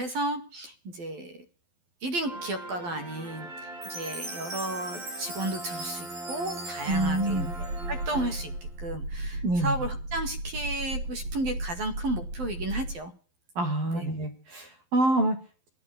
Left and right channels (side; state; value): left; late; 12 ms